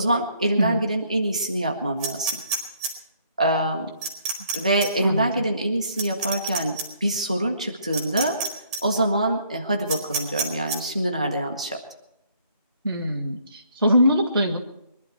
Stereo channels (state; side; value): inverted; both; correlation -0.65